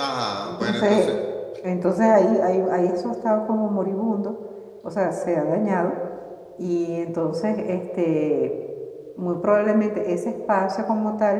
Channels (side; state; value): both; identical; correlation 1.00